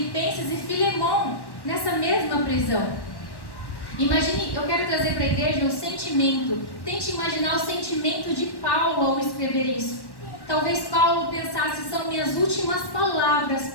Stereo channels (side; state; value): right; late; 1.1 ms